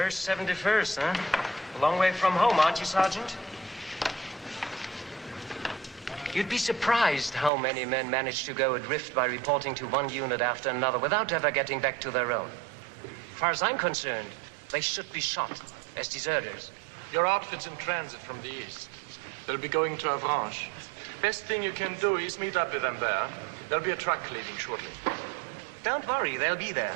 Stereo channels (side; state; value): left; drops out; at 7.5 s